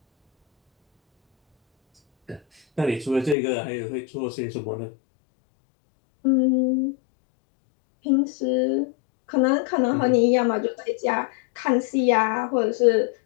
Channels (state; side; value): drops out; right; at 3.4 s